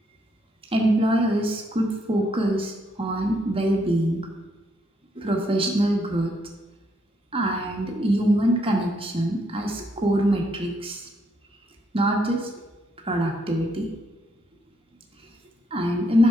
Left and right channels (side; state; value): both; normal; correlation 0.74